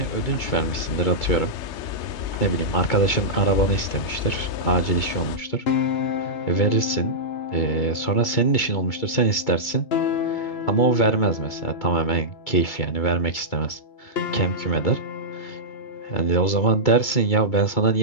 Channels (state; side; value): late; right; 2.3 ms